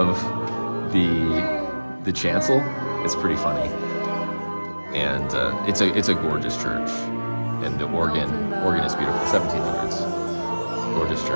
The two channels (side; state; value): both; inverted; correlation -1.00